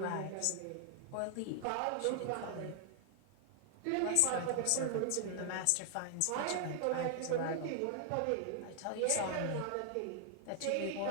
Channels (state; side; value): different; both; correlation 0.00